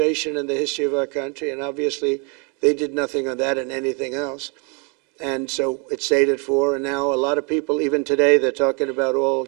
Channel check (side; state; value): left; quieter; 33.6 dB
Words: in the history of our country, and obviously they did nothing on that and anything else. And so it stayed at 4, and now a lot of people, even today, they're talking about all